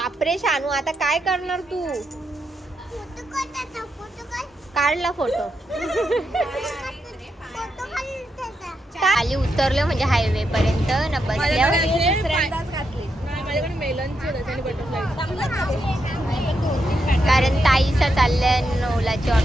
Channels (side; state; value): both; normal; correlation 0.83